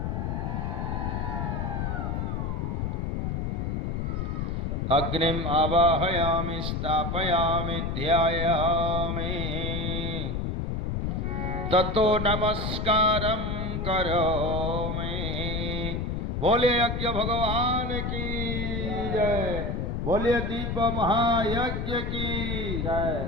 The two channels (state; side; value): noise; left; rumble, 1 dB below the sound